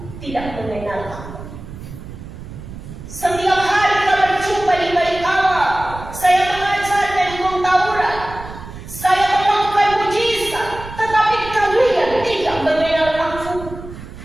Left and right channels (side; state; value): right; noise; rumble, 13 dB below the sound